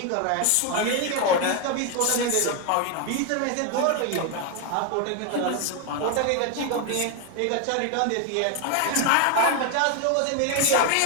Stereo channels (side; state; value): both; different; correlation 0.01